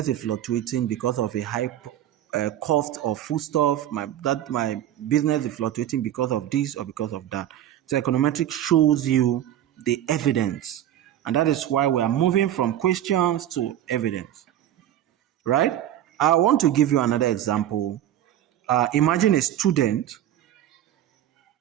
is fluctuating because of a high cost of foodstuff. My business is fluctuating because of this or because of that. So econometrics shows you the evidence, and that is why we are moving from questions to evidence. Right? I want to give you another example. Imagine a student.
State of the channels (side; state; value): left; quieter; 11.8 dB